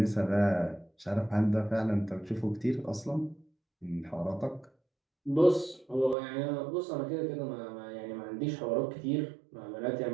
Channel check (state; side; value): drops out; left; at 6.2 s